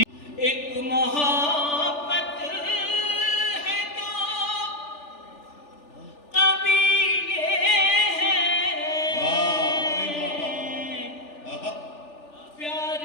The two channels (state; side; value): late; right; 3.4 ms